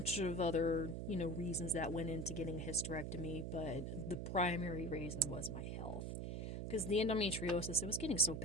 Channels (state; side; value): noise; right; hum, 4 dB below the sound